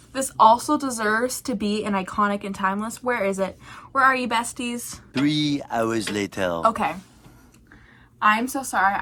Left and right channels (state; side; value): identical; both; correlation 1.00